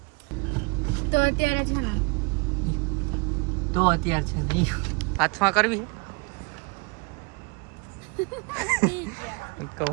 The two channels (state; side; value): quieter; left; 30.1 dB